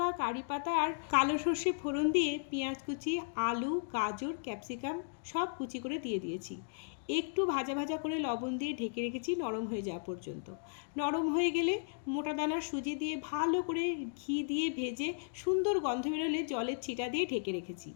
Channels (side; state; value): right; silent; digital silence